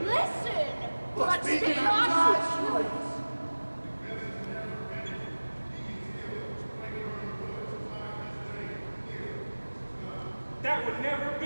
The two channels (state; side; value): inverted; both; correlation -1.00